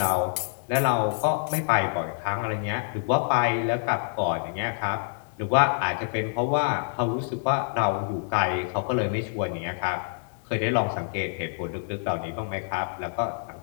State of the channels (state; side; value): silent; right; digital silence